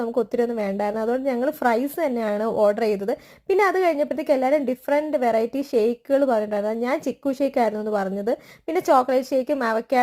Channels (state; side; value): identical; both; correlation 1.00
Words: നമുക്ക് ഒത്തിരി ഒന്നും വേണ്ടായിരുന്നു. അതുകൊണ്ട് ഞങ്ങൾ ഫ്രൈസ് തന്നെയാണ് ഓർഡർ ചെയ്തത്. പിന്നെ അത് കഴിഞ്ഞപ്പോഴത്തേക്ക് എല്ലാവരും ഡിഫറെൻറ്റ് വെറൈറ്റി ഷേക്കുകൾ പറഞ്ഞിട്ടുണ്ടായിരുന്നു. ഞാൻ ചിക്കു ഷേക്ക് ആയിരുന്നു എന്ന് പറഞ്ഞത്. പിന്നെ ചോക്ലേറ്റ് ഷേക്കും